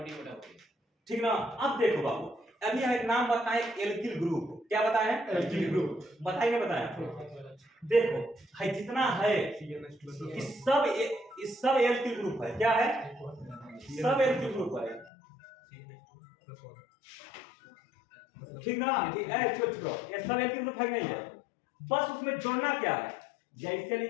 ठीक ना। अब देखो बाबू, अभी हम एक नाम बताएं, एल्किल ग्रुप, क्या बताएं, एल्किल ग्रुप, बताएंगे, बताएं। देखो है जितना है, इस सब एल्किल ग्रुप है, क्या है, सब एल्किल ग्रुप है, ठीक ना। ये सब एल्किल ग्रुप है नहीं है, बस उसमें जोड़ना क्या है, जैसे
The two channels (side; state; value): right; drops out; at 15.1 s